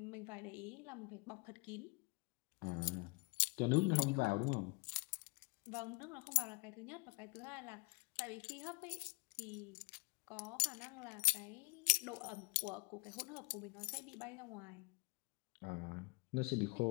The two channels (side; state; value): right; quieter; 30.0 dB